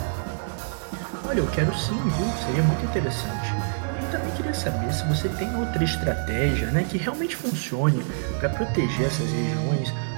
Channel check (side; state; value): left; silent; digital silence